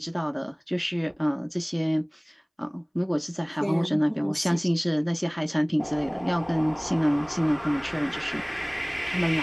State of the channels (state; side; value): identical; both; correlation 1.00